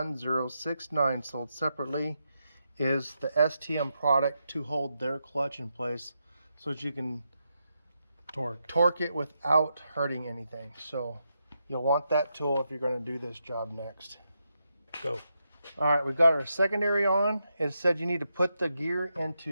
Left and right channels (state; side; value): inverted; both; correlation -0.84